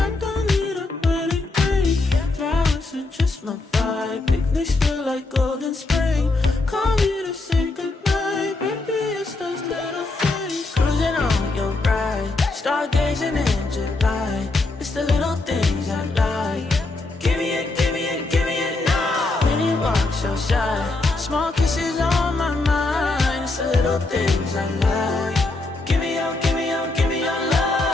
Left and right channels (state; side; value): quieter; right; 3.2 dB